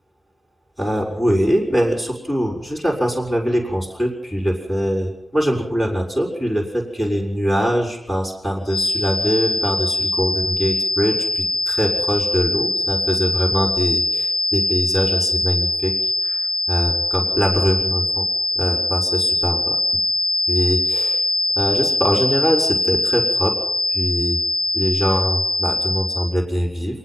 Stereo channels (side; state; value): both; normal; correlation 0.90